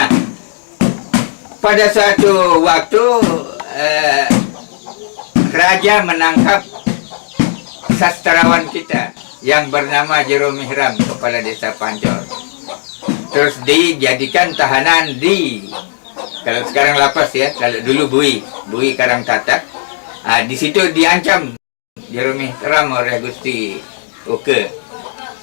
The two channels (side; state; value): right; silent; digital silence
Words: pada suatu waktu raja menangkap sastrawan kita yang bernama Jerome Mihram, kepala desa Pancor. Terus dijadikan tahanan di, kalau sekarang lapas ya, kalau dulu Bui Karangtatak. Di situ diancam Jerome Mihram oleh Gusti Oke,